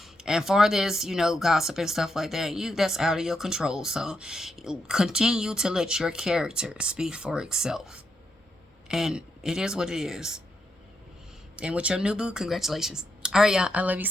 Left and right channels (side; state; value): both; normal; correlation 0.81